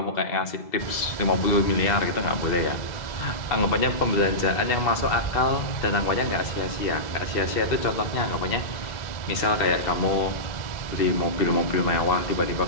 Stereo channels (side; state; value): right; late; 2.0 ms